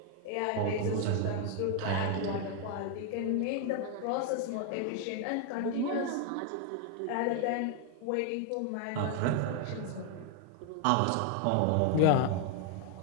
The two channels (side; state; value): both; different; correlation 0.00